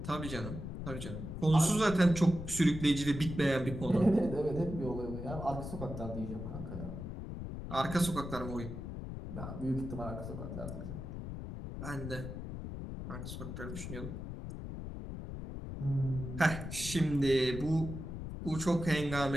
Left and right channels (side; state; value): left; noise; rumble, 7 dB below the sound